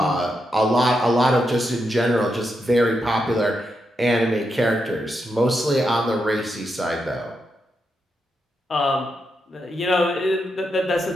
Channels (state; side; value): normal; both; correlation 0.84